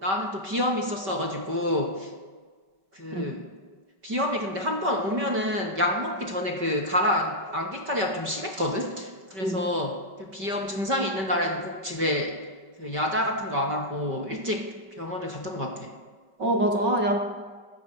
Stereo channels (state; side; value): late; left; 5.2 ms